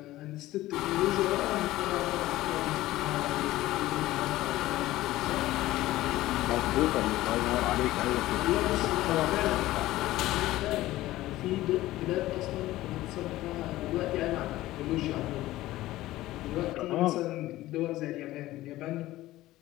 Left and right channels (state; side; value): quieter; right; 16.4 dB